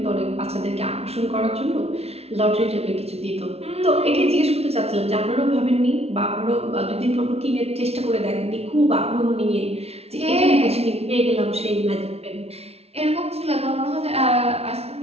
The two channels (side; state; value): left; late; 0.30 ms